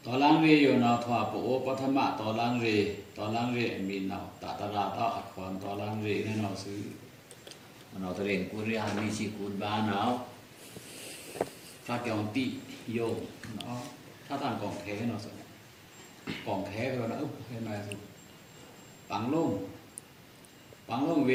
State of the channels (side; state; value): both; identical; correlation 1.00